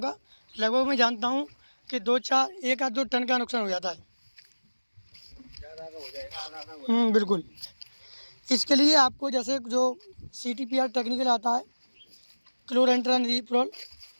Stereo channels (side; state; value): both; inverted; correlation -1.00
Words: का। लगभग मैं जानता हूँ कि 1 या 2 टन का नुकसान हो जाता है। बिल्कुल। इसके लिए आपको जैसे जो CTPR टेक्निकल आता है, क्लोरेंट्रानिलीप्रोल,